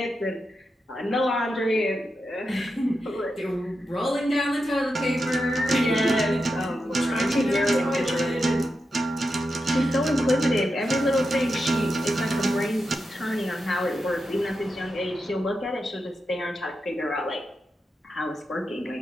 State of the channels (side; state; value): both; normal; correlation 0.88